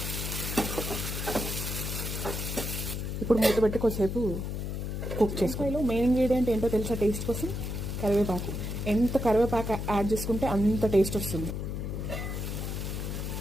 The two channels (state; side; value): noise; left; hum, 4 dB below the sound